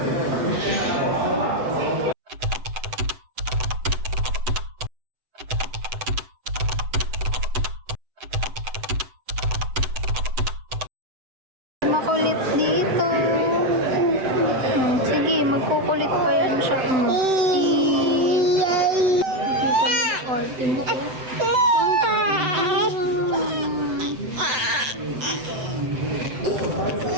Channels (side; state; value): left; late; 7.9 ms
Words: Makulit dito. Sige, magkukulit pa yan siya. Arte mo ko.